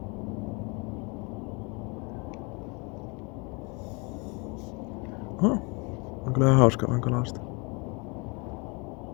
On kyllä ihan hauska vaan kalasta.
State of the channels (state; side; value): quieter; right; 30.5 dB